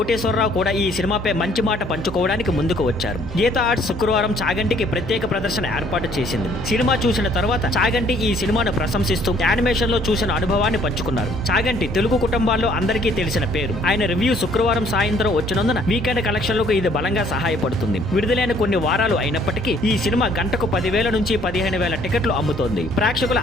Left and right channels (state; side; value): normal; both; correlation 0.61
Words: కూడా ఈ సినిమాపై మంచి మాట పంచుకోవడానికి ముందుకు వచ్చారు. గీతా ఆర్ట్స్ శుక్రవారం చాగంటికి ప్రత్యేక ప్రదర్శన ఏర్పాటు చేసింది. సినిమా చూసిన తర్వాత చాగంటి ఈ సినిమాను ప్రశంసిస్తూ యానిమేషన్ లో చూసిన అనుభవాన్ని పంచుకున్నారు. చాగంటి తెలుగు కుటుంబాల్లో అందరికీ తెలిసిన పేరు. ఆయన రివ్యూ శుక్రవారం సాయంత్రం వచ్చినందున వీకెండ్ కలెక్షన్లకు ఇది బలంగా సహాయపడుతుంది. విడుదలైన కొన్ని వారాలు అయినప్పటికీ ఈ సినిమా గంటకు 10,000 నుంచి 15,000 టికెట్లు అమ్ముతోంది. ప్రేక్షకుల